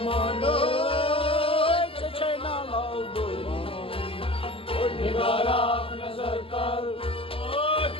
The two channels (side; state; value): right; late; 0.26 ms